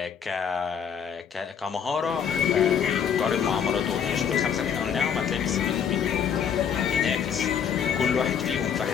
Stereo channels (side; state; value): right; quieter; 7.8 dB